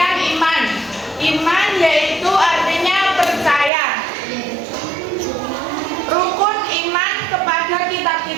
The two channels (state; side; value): drops out; left; at 3.7 s